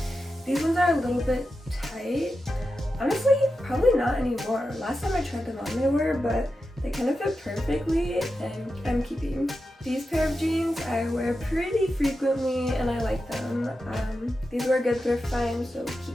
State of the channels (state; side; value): normal; both; correlation 0.90